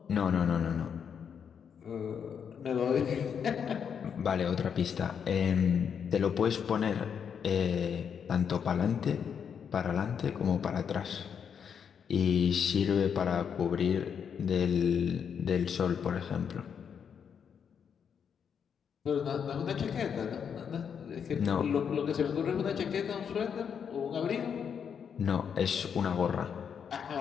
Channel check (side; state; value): right; quieter; 7.4 dB